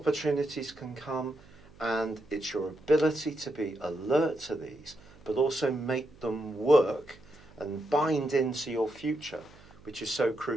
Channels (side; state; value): right; noise; hum, 24 dB below the sound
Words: can come, and it's your ability to be alert to these, but also make them work and bind into your future, which is so